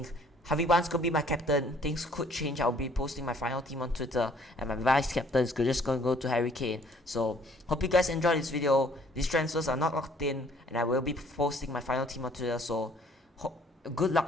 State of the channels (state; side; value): normal; both; correlation 0.59